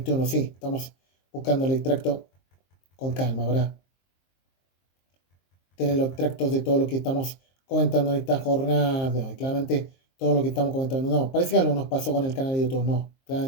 Sí, estamos buscando el extracto con calma, ¿verdad? Tener los extractos de todo lo que estamos comentando en esta jornada de hoy. Claramente, todo lo que estamos comentando. No, parece que algo nos pasó con el canal de YouTube. No,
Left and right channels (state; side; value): late; right; 23 ms